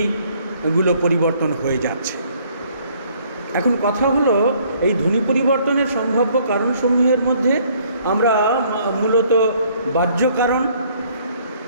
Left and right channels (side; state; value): both; inverted; correlation -0.62